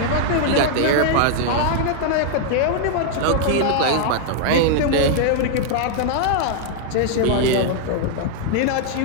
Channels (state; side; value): different; both; correlation -0.01